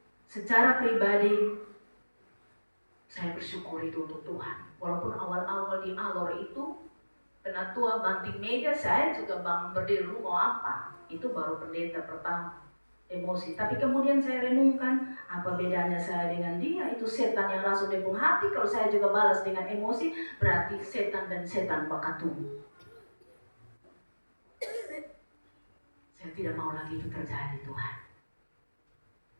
Secara pribadi, saya bersyukur itu untuk Tuhan. Walaupun awal-awal di Alor itu, penatua banting meja, saya juga berdiri mau apa. Itu baru pendeta pertama, emosi. Tapi kemudian saya renungkan, apa bedanya saya dengan dia? Itu setan yang langsung depung hati. Kalau saya juga balas dengan emosi, berarti setan dan setan bakatung. Saya tidak mau lagi itu terjadi, Tuhan.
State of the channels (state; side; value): inverted; both; correlation -1.00